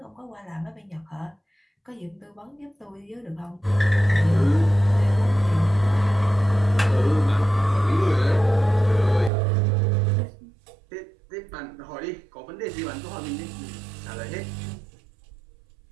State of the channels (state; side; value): drops out; left; at 9.3 s